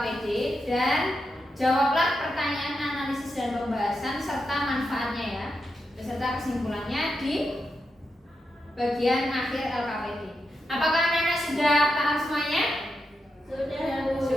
dan jawablah pertanyaan analisis dan pembahasan serta manfaatnya ya, beserta kesimpulannya di bagian akhir LKPD. Apakah anak-anak sudah paham semuanya? Sudah, Bu.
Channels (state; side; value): normal; both; correlation 0.86